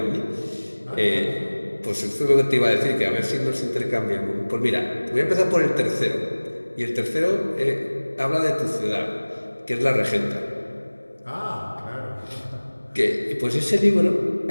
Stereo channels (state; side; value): inverted; both; correlation -1.00